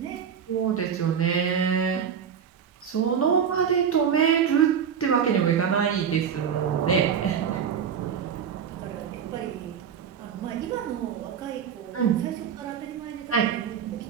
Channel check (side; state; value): left; quieter; 7.7 dB